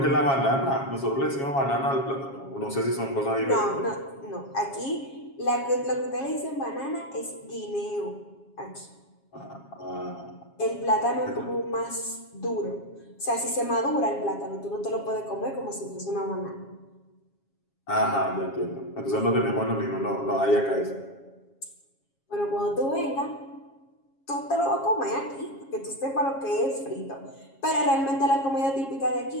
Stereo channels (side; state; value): right; late; 7.3 ms